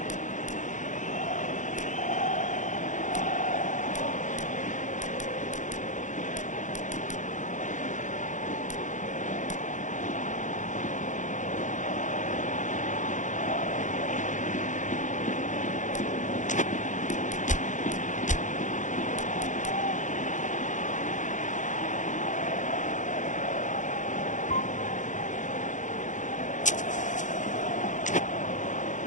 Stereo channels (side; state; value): right; late; 0.36 ms